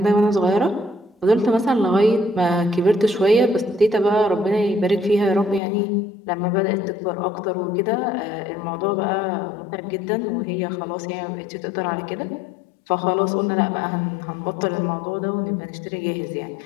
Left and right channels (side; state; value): right; drops out; at 5.6 s